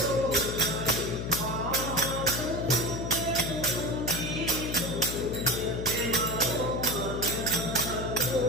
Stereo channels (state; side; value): noise; left; hum, 4 dB below the sound